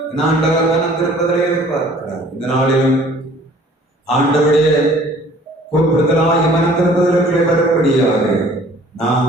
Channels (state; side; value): normal; both; correlation 0.53